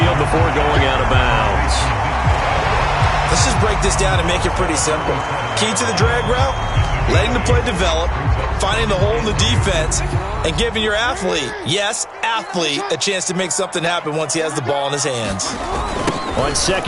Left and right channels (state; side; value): identical; both; correlation 1.00